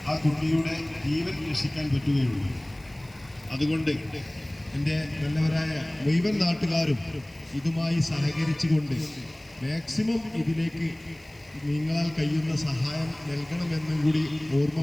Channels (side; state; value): left; noise; hiss, 29 dB below the sound